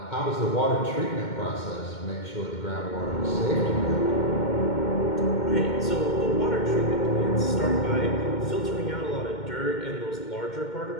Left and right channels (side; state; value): right; late; 2.2 ms